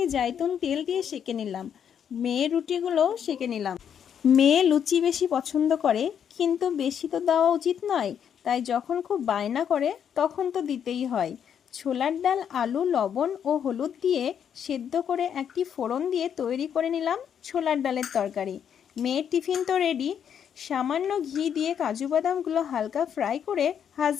জাইতুন তেল দিয়ে সেঁকে নিলাম। মেয়ের রুটিগুলোও সেঁকে নিলাম। মেয়ে লুচি বেশি পছন্দ করে, কিন্তু বেশি তো দেওয়া উচিত নয়, তাই যখন খুব বায়না করে তখন তো দিতেই হয়। ছোলার ডাল, আলু, লবণ ও হলুদ দিয়ে সেদ্ধ করে একটি ফোড়ন দিয়ে তৈরি করে নিলাম ছোলার ডালের তরকারি। মেয়ের টিফিন তো রেডি। সামান্য ঘি দিয়ে কাজু বাদামগুলো হালকা ফ্রাই করে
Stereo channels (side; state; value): right; quieter; 8.4 dB